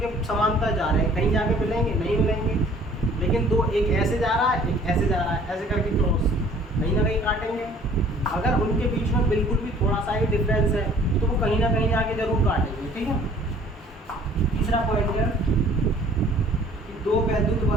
समांतर जा रहे हैं, कहीं जाके मिलेंगे? नहीं मिलेंगे। लेकिन दो, एक ऐसे जा रहा है, एक ऐसे जा रहा है, ऐसे करके क्रॉस, कहीं ना कहीं काटेंगे। अगर उनके बीच में बिल्कुल भी थोड़ा सा ही डिफरेंस है तो वो कहीं ना कहीं जाके जरूर काटेंगे, ठीक है। तीसरा पॉइंट है कि दो वैद्युत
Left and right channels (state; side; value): normal; both; correlation 0.54